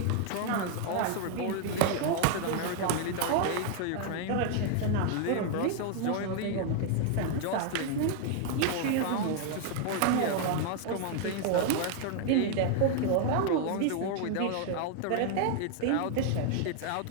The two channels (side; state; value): both; different; correlation 0.00